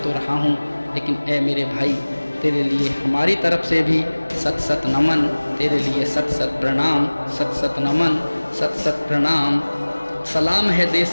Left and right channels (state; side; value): inverted; both; correlation -1.00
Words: रहा हूँ, लेकिन ए मेरे भाई, तेरे लिए हमारी तरफ से भी सत सत नमन, तेरे लिए सत सत प्रणाम, सत सत नमन, सत सत प्रणाम। सलाम है